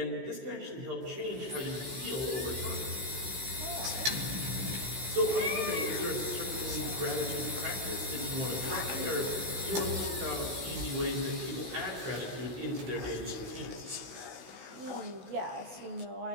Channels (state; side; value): late; left; 15 ms